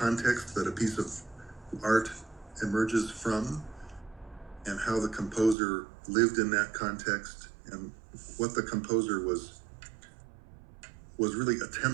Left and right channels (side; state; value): left; drops out; at 5.6 s